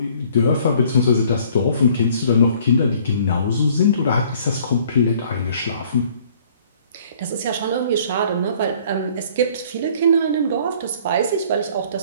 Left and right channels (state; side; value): inverted; both; correlation -0.57